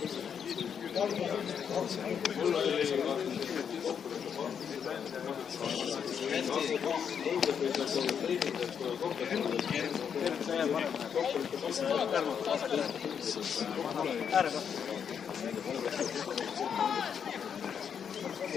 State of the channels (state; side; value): quieter; right; 7.5 dB